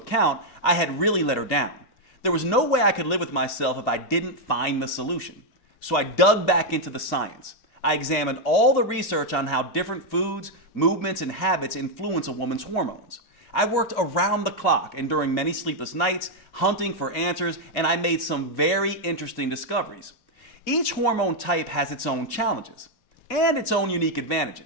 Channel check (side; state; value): right; late; 2.5 ms